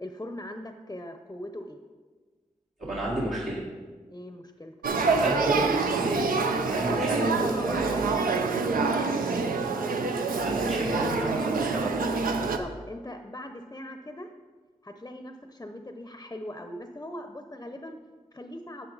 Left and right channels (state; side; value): quieter; left; 3.0 dB